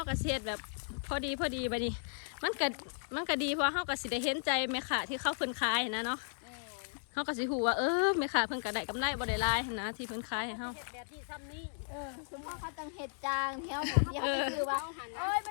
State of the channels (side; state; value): right; silent; digital silence